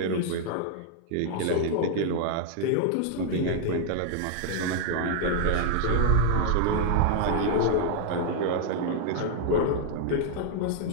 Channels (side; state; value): both; different; correlation -0.01